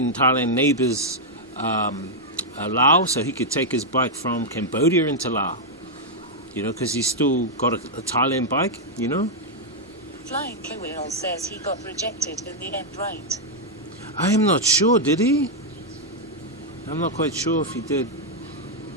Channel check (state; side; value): normal; both; correlation -0.03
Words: Thailand neighbors Laos, so he could take his bike from Cambodia into Laos, you know, because he's still got a Thailand bike, you know. Flying Kewell says he got rejected in the end, right? I am not sure, did he? I'm not quite sure if he did.